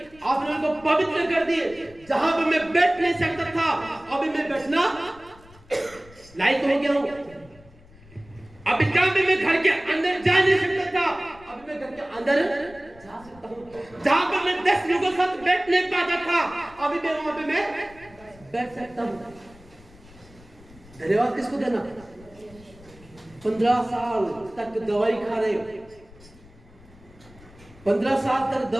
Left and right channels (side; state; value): left; noise; rumble, 24 dB below the sound